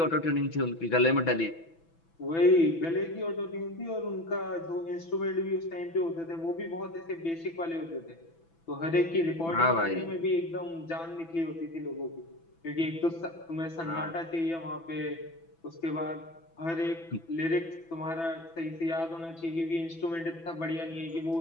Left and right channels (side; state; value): right; late; 6.0 ms